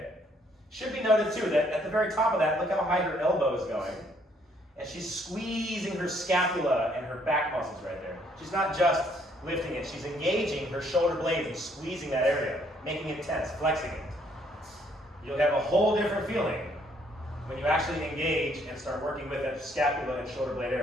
Should be noted too that at the very top of that, look how high her elbow is going. And she's squeezing her scapula and her back muscles right there. She's not just lifting it, she's engaging her shoulder blades and squeezing that area, making it tense, flexing it. You'll have a whole different feeling when you actually engage and start working with that scapula and shoulder blade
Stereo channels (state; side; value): normal; both; correlation 0.67